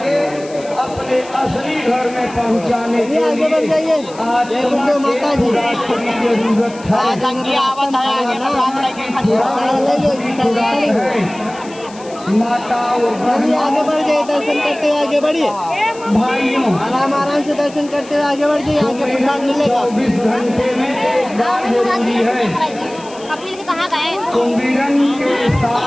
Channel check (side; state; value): left; noise; hiss, 21 dB below the sound